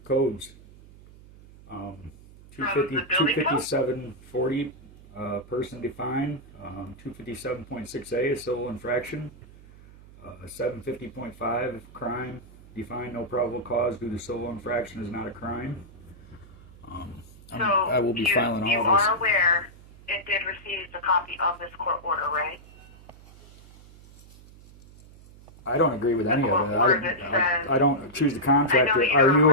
codes. 25740, person defined. 257.6a, a civil infraction. 750.5, crime defined, no probable cause due to civil infraction is not a crime. I will be filing all this. You are aware it did receive a copy of this court order, right? I don't agree with any of it. I don't choose the contractor.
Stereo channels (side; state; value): right; noise; hum, 22 dB below the sound